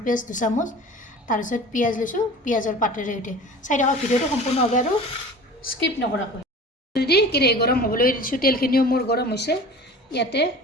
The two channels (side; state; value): both; normal; correlation 0.39